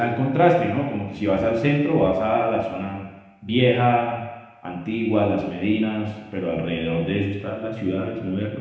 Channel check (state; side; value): identical; both; correlation 1.00